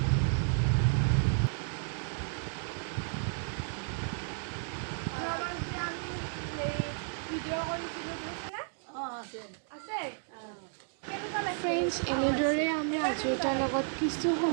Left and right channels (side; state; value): left; silent; 56 dB below the other